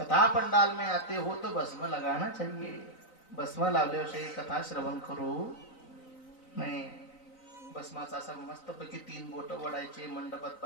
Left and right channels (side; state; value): right; late; 3.9 ms